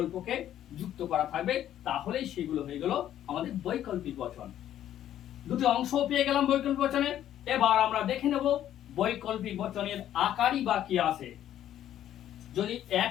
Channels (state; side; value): quieter; right; 11.5 dB